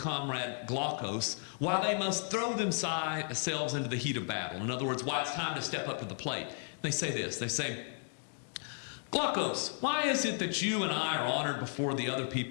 Glaucus why they must throw themselves into the heat of battle. In other words, why it's time to step up to the plate. They say this. They say, Glaucus, why is it that you and I are honored before the other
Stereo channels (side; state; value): right; silent; 55 dB below the other